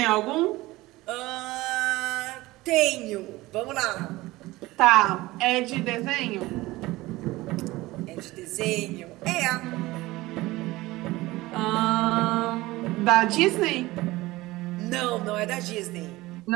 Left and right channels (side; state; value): left; quieter; 19.2 dB